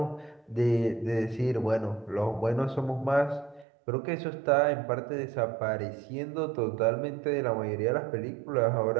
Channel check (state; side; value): drops out; left; at 3.7 s